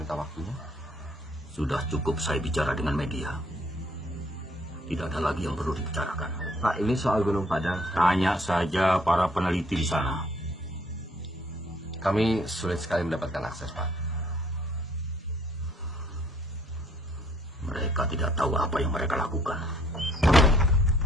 waktunya? Sudah cukup saya bicara dengan media. Tidak ada lagi yang perlu dibicarakan. Pak, ini soal Gunung Padang. Tanya saja para peneliti di sana. Kami sulit sekali mendapatkan akses, Pak. Mereka tidak tahu apa yang mereka lakukan.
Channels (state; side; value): normal; both; correlation 0.63